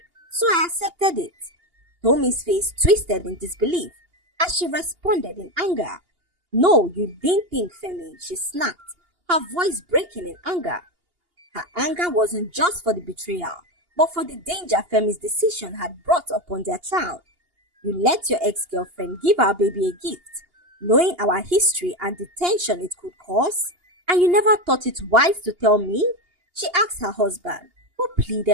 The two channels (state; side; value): late; left; 2.8 ms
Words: so I accepted it." Tommy's face twisted in disbelief as she responded in anger. "No, you didn't think, Femi," she snapped, her voice breaking in anger. Her anger wasn't just for the betrayal, but for the danger Femi's decision had brought upon their child. "You let your ex-girlfriend give our baby a gift, knowing our history and the tension it could cause, and you never thought it wise to tell me?" she asked her husband, who